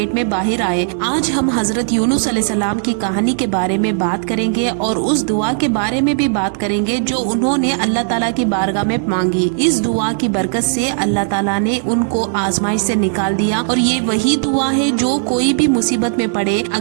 میں باہر آئے۔ آج ہم حضرت یونس علیہ السلام کی کہانی کے بارے میں بات کریں گے اور اس دعا کے بارے میں بھی بات کریں گے جو انہوں نے اللہ تعالیٰ کی بارگاہ میں مانگی۔ اس دعا کی برکت سے اللہ تعالیٰ نے ان کو آزمائش سے نکال دیا، اور یہ وہی دعا ہے جو کوئی بھی مصیبت میں پڑے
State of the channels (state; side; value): silent; left; digital silence